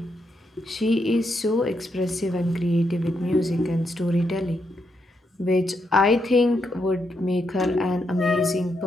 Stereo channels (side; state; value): both; normal; correlation 0.81